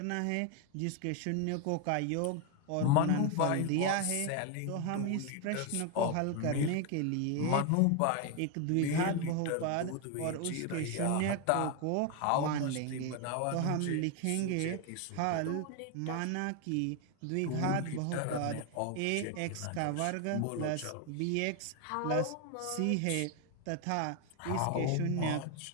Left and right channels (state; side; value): different; both; correlation 0.01